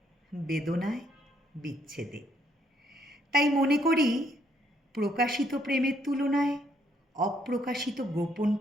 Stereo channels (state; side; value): normal; both; correlation 0.70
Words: বেদনায়, বিচ্ছেদে। তাই মনে করি প্রকাশিত প্রেমের তুলনায় অপ্রকাশিত গোপন